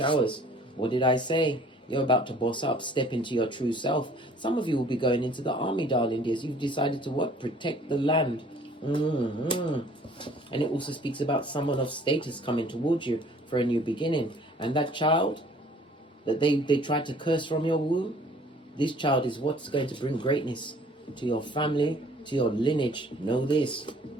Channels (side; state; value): both; normal; correlation 0.54